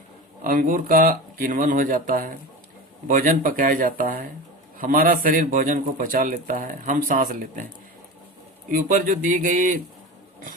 अंगूर का किण्वन हो जाता है, भोजन पकाया जाता है, हमारा शरीर भोजन को पचा लेता है, हम सांस लेते हैं। ऊपर जो दी गई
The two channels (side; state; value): both; normal; correlation 0.28